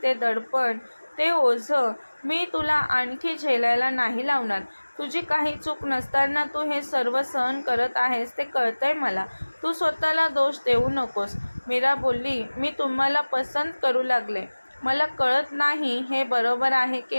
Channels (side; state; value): both; inverted; correlation -1.00